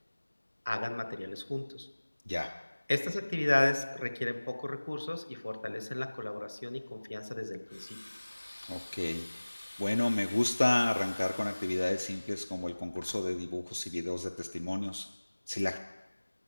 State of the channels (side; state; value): both; inverted; correlation -1.00